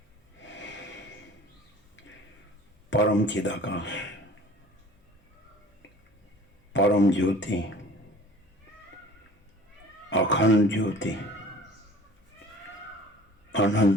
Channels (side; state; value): both; normal; correlation 0.46